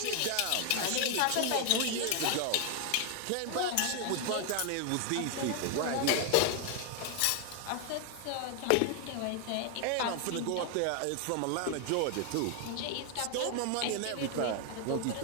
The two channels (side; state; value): both; different; correlation 0.00